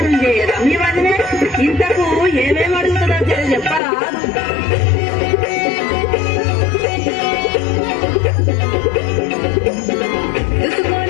చేయదా మీ వదిన? ఇంతకు ఏమేమి అడుగుతుందో చెప్పరా?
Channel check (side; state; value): right; drops out; at 3.8 s